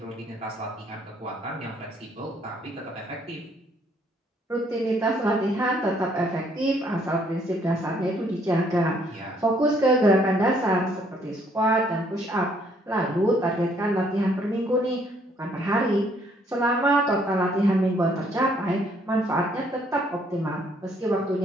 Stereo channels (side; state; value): both; normal; correlation 0.66